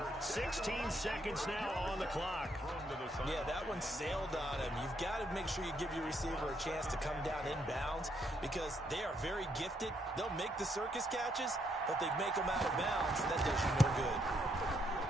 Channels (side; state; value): both; normal; correlation 0.74